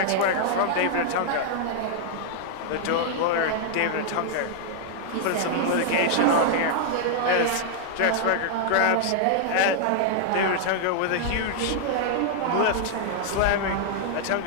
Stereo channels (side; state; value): both; different; correlation -0.01